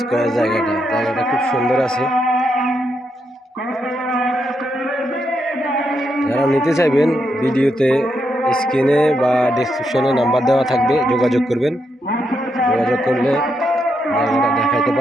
জায়গাটা খুব সুন্দর আছে। যারা নিতে চাইবেন ভিডিওতে স্ক্রিনে বা ডেসক্রিপশনে নাম্বার দেওয়া থাকবে, যোগাযোগ করবেন। যোগাযোগ করলে জায়গাটা দেখাইতে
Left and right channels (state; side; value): normal; both; correlation 0.81